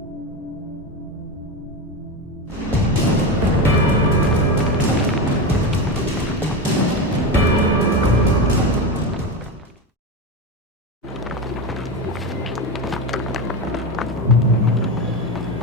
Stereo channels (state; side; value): normal; both; correlation 0.19